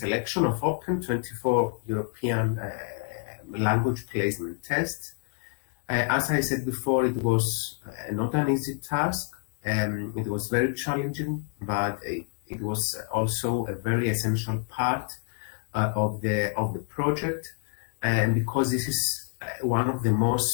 of open 24 European language placement tests. As I said before, it was not an easy task. It was very challenging, but it was also a very essential part of the project, and because this is one of the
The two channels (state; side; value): silent; right; 57 dB below the other